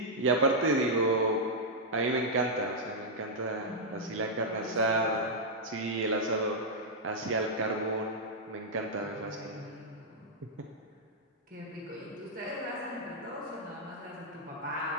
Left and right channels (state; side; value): normal; both; correlation -0.05